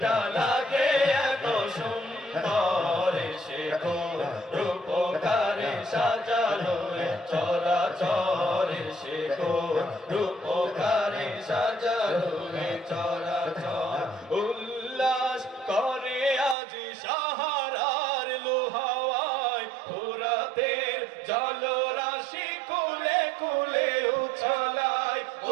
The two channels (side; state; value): left; drops out; at 16.6 s